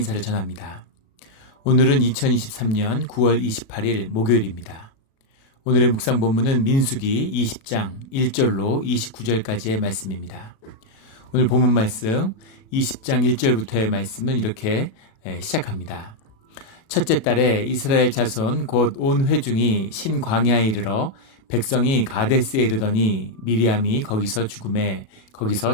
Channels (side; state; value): right; late; 37 ms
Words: 전합니다. 오늘은 2023년 9월 28일 목요일입니다. 오늘의 묵상 본문은 민수기 20장 1절로 29절까지의 말씀입니다. 오늘 본문 말씀 20장 1절부터의 말씀은 이렇게 시작합니다. 첫째 달에 이스라엘 자손 곧 온 회중이 신광야에 이르러 백성이 가데스에 이르더니 미리암이 거기서 죽음에